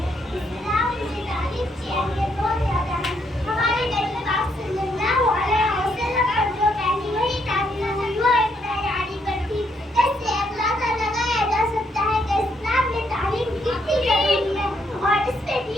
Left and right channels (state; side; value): normal; both; correlation 0.74